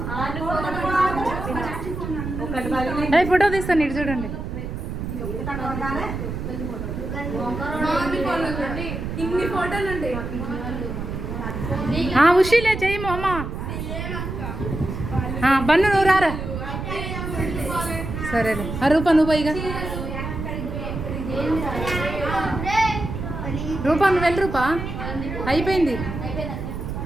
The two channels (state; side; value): noise; right; rumble, 5 dB below the sound